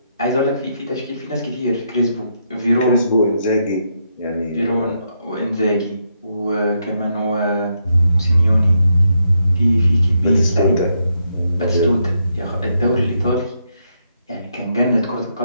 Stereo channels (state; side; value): inverted; both; correlation -0.79